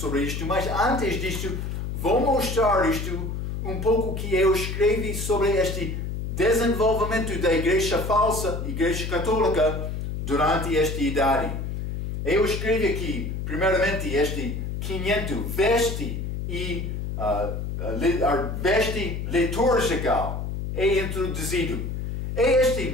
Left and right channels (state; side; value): noise; left; hum, 4 dB below the sound